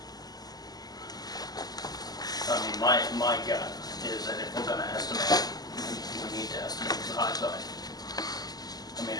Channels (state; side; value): late; right; 0.19 ms